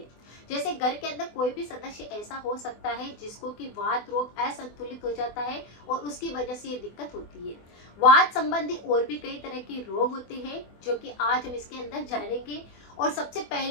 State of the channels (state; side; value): late; right; 24 ms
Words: जैसे घर के अंदर कोई भी सदस्य ऐसा हो सकता है जिसको कि वात रोग असंतुलित हो जाता है और उसकी वजह से ये दिक्कत होती है। वात संबंधी और भी कई तरह के रोग होते हैं जो कि आज हम इसके अंदर जानेंगे। और सबसे